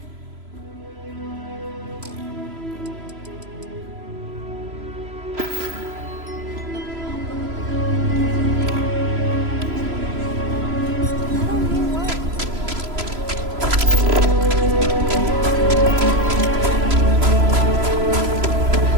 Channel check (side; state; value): left; late; 3.0 ms